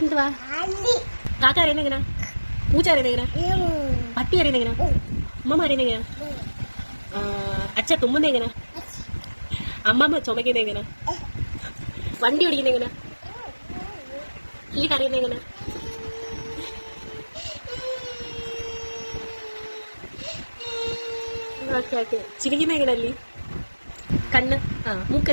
കാക്ക അറിയുന്ന എങ്ങനാ? പൂച്ച അറിയുന്ന എങ്ങനാ? പട്ടി അറിയുന്ന എങ്ങനാ? അമ്മമ്മ അറിയുന്ന എങ്ങനാ? അച്ഛ തുമ്മുന്ന എങ്ങനാ? അമ്മമ്മ ചുമക്കുന്ന എങ്ങനാ? വണ്ടി ഓടിക്കുന്ന എങ്ങനാ? ഈ കറിയുന്ന എങ്ങനാ? Okay okay. ചിരിക്കുന്ന എങ്ങനല്ലേ? കണ്ണ്.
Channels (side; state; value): both; inverted; correlation -1.00